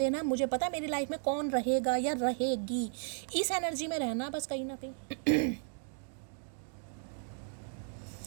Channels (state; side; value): silent; left; 55 dB below the other